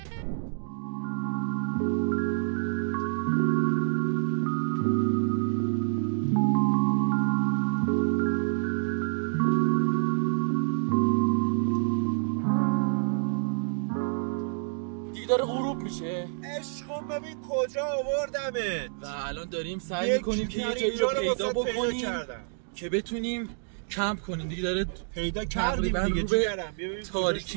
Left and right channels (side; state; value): left; silent; digital silence